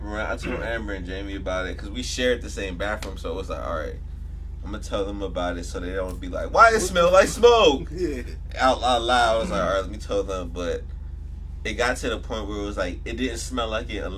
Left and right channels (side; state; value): both; identical; correlation 1.00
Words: around. I told Amber and Jamie about it because we shared the same bathroom, so it was like, all right, I'm gonna tell them about it so they don't be like, why it smell like smoke? Yeah. Out loud. I was like, all right, let me tell them. But it got to the point where it was like, it didn't smell like it